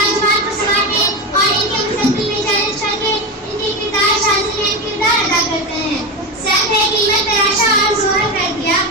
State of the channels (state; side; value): normal; both; correlation 0.18